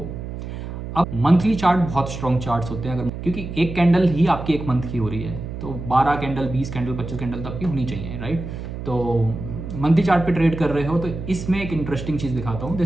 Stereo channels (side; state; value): right; noise; hum, 8 dB below the sound